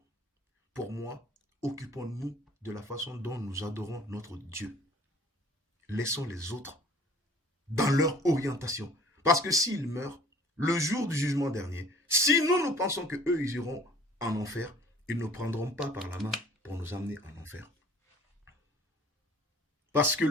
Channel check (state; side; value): normal; both; correlation 0.51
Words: pour moi, occupons-nous de la façon dont nous adorons notre Dieu. Laissons les autres dans leur orientation. Parce que s'ils meurent, le jour du jugement dernier, si nous pensons qu'eux, ils iront en enfer, ils ne prendront pas par la main pour nous amener en enfer. Parce que